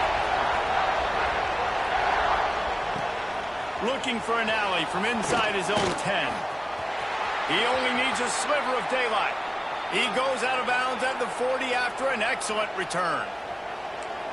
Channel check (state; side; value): identical; both; correlation 1.00